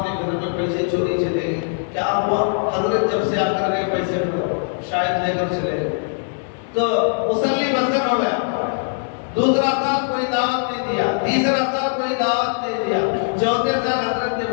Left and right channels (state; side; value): silent; right; 59 dB below the other